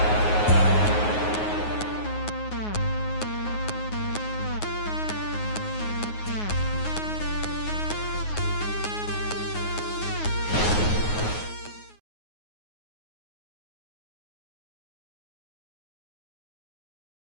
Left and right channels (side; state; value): right; late; 9.5 ms